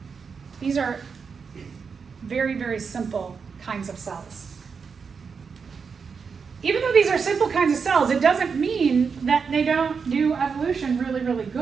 These are very, very simple kinds of cells. Even though these are simple kinds of cells, it doesn't mean that they don't do evolution really, really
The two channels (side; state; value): left; quieter; 5.7 dB